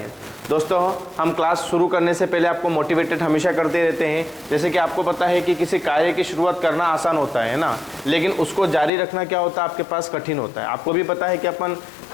दोस्तों, हम क्लास शुरू करने से पहले आपको मोटिवेटेड हमेशा करते रहते हैं। जैसे कि आपको पता है कि किसी कार्य की शुरुआत करना आसान होता है ना, लेकिन उसको जारी रखना क्या होता है आपके पास कठिन होता है। आपको भी पता है कि अपन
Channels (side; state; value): right; drops out; at 8.9 s